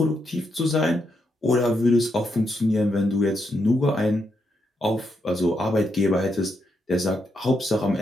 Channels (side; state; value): both; normal; correlation 0.80